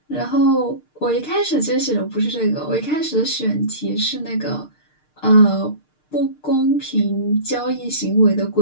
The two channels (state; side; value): late; right; 6.6 ms